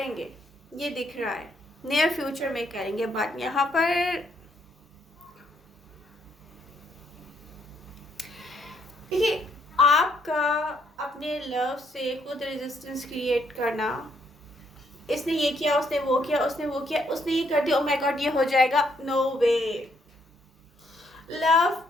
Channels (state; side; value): normal; both; correlation 0.71